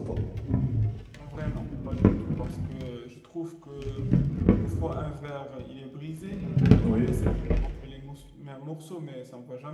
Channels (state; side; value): identical; both; correlation 1.00